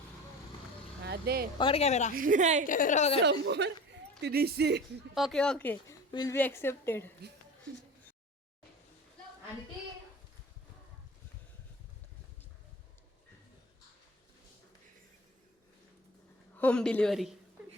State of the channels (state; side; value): normal; both; correlation 0.36